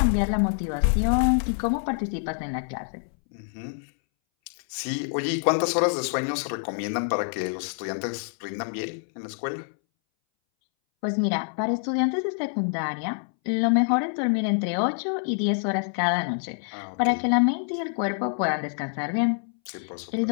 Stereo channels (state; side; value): silent; right; 61 dB below the other